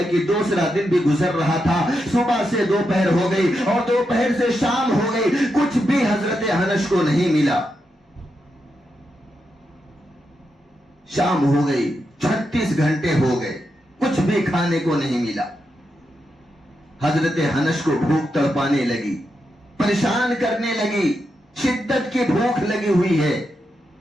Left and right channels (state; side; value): normal; both; correlation 0.85